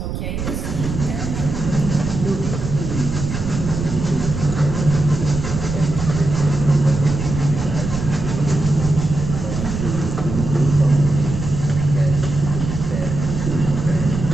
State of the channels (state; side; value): noise; right; rumble, 5 dB below the sound